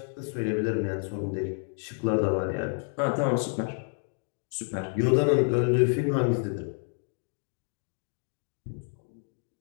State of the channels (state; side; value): silent; right; 58 dB below the other